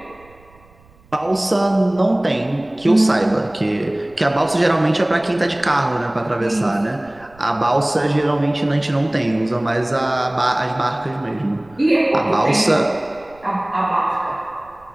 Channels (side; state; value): right; noise; rumble, 28 dB below the sound